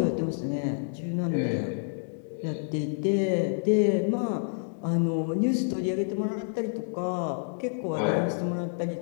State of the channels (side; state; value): right; silent; digital silence